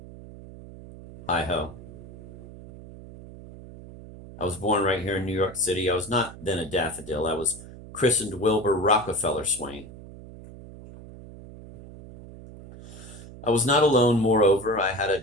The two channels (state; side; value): noise; right; hum, 16 dB below the sound